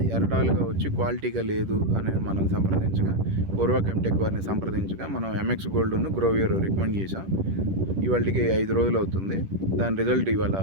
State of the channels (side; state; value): left; late; 10 ms